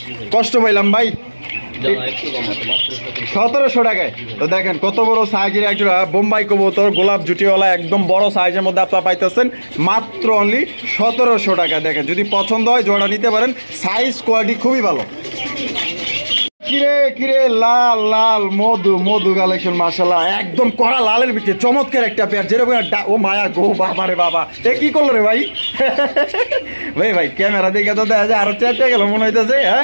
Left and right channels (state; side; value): inverted; both; correlation -1.00